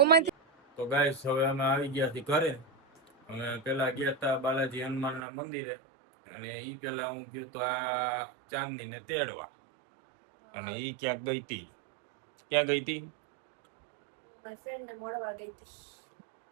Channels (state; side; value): drops out; left; at 5.2 s